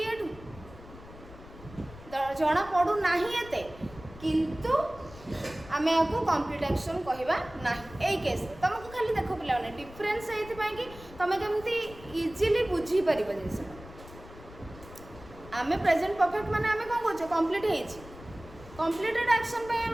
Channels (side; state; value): left; noise; rumble, 18 dB below the sound